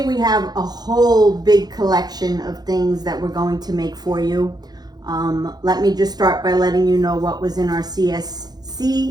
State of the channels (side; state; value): left; late; 0.19 ms